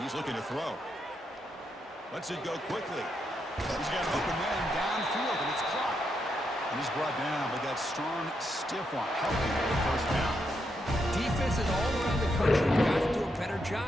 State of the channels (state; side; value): normal; both; correlation 0.81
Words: he's looking to throw. Lets it go quickly. He's got an open man downfield, and it's caught. And he's brought down, but that strong, stiff one helping with the first down. Defenses all around the country have got to do a better